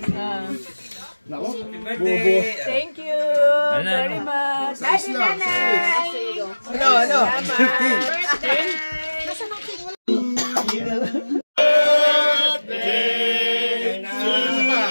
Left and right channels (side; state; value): both; inverted; correlation -1.00